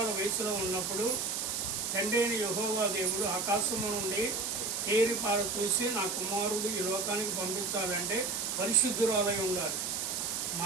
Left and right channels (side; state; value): right; noise; hiss, 1 dB below the sound